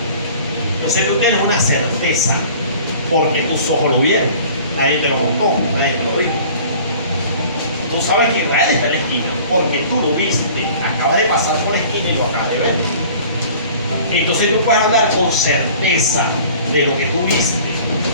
Entonces tú tienes una certeza, porque tus ojos lo vieron, nadie te lo contó, nadie te lo dijo. Tú sabes que Israel está en la esquina, porque tú lo viste, acabas de pasar por la esquina y lo acabas de ver. Entonces tú puedes hablar con certeza de lo que tú viste,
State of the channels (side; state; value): both; inverted; correlation -0.47